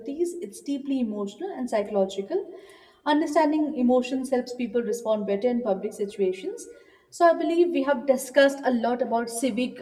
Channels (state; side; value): identical; both; correlation 1.00